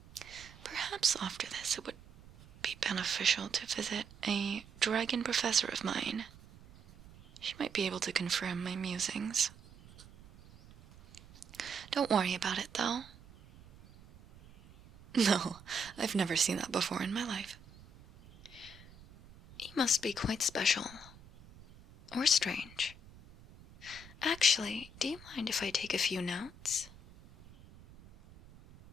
Perhaps after this it would be beneficial to visit a dragon professor of mine. She might be able to confirm my musings. Don't worry about it, though. No, I've never seen that before in my life. He must be quite special. Or strange. Actually, do you mind if I take a few notes?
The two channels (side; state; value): right; noise; rumble, 21 dB below the sound